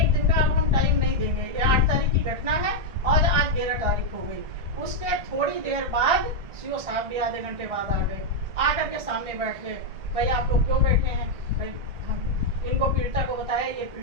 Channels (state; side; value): late; left; 1.6 ms